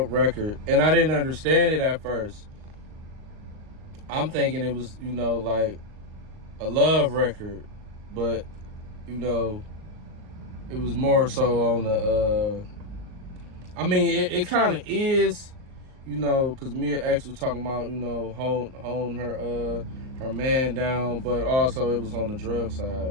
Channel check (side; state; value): left; late; 39 ms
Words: record. And I didn't understand it at first. I'm thinking it was, like a love record. But, it was more so on the, it kind of is, because Mia X was talking about, holding her man down. But also it was on the drug